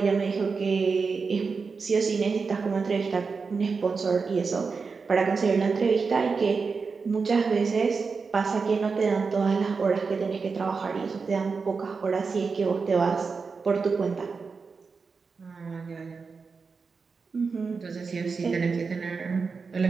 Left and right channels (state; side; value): quieter; left; 4.9 dB